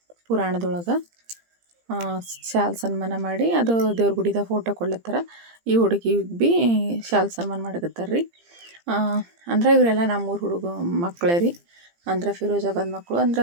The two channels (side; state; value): left; late; 17 ms